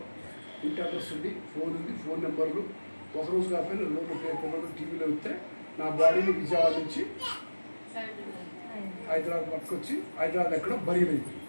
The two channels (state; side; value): inverted; both; correlation -1.00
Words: ఇంటి అడ్రస్ ఉంది, ఫోన్ ఉంది, ఫోన్ నెంబర్లు, ఒకరోజు కాకపోయినా లోపల పేపర్లు టీవీలో వస్తే నా బాడీని విజయవాడ నుంచి హైదరాబాద్ పట్టుకొచ్చి హైదరాబాద్ ఎక్కడో బయలుదేరింది.